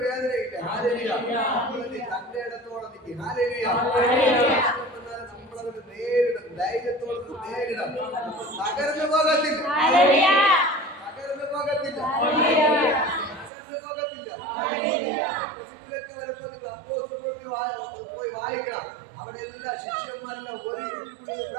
വേദനയില്ല. തന്റെ ഇടത്തോടെ നിൽക്കും. നമ്മളതിന് നേരിടും, ധൈര്യത്തോടെ നേരിടാം. തകർന്നു പോകത്തില്ല. വരുമ്പോ നിങ്ങൾ അപ്പോസ്തലരുടെ പോയി വായിക്കണം. അവിടെ എല്ലാ ശിഷ്യന്മാരെല്ലാം ഒരുമിച്ച് കൂടി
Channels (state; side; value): drops out; left; at 13.5 s